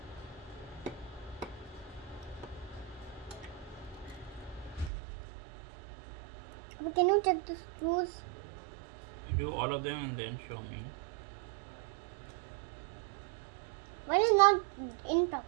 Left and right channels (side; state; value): left; drops out; at 4.9 s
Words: Can you check the screws? Do all of them and then show me. One is not in